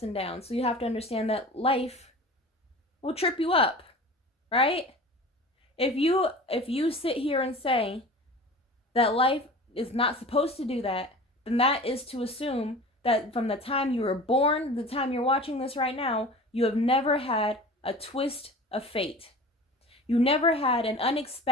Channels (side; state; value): both; normal; correlation 0.38